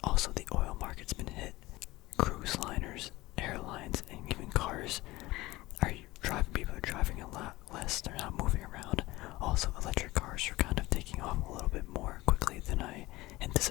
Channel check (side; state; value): right; quieter; 19.2 dB